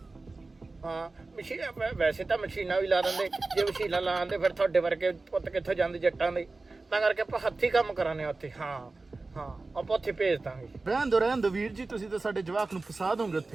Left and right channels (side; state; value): left; quieter; 3.5 dB